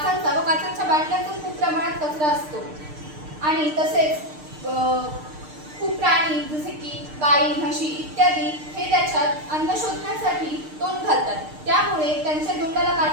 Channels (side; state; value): left; late; 6.6 ms